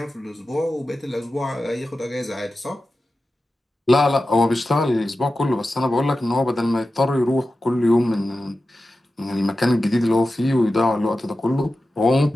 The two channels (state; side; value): normal; both; correlation 0.93